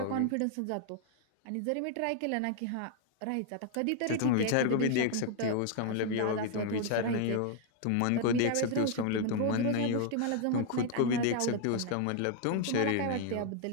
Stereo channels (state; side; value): different; both; correlation 0.00